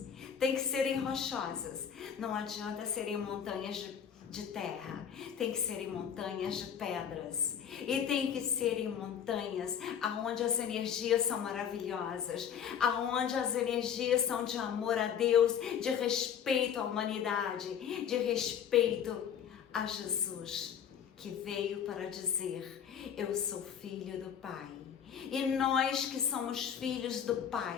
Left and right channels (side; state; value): right; quieter; 8.3 dB